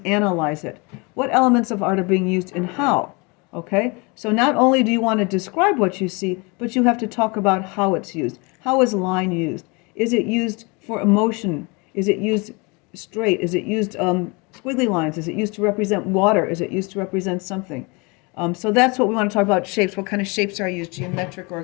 analyze it. What elements of art are being used and how? Okay? So not only do you want to describe what you see, but you have to talk about how it's used. How is line used? Is it used for emotion? Is it used straight? Is it used squiggly lines? Is it used to represent water? Is it used to represent something? So that's what we want to talk about, shapes. What kind of shapes are used, geometric or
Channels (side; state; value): right; quieter; 28.5 dB